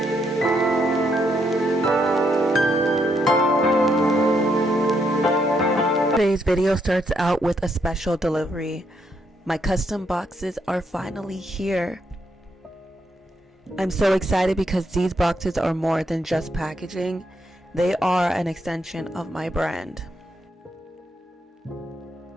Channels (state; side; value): normal; both; correlation 0.76